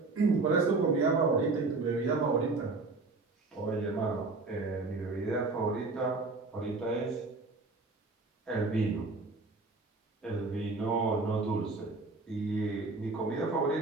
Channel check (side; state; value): left; quieter; 3.6 dB